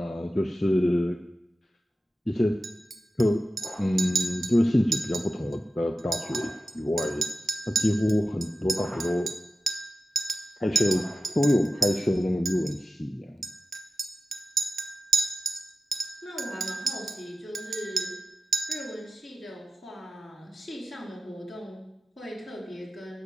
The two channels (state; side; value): normal; both; correlation 0.94